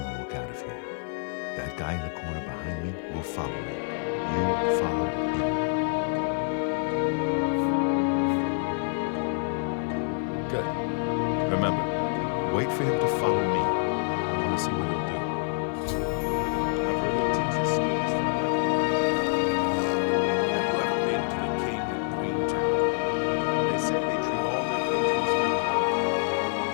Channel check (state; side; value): silent; right; 59 dB below the other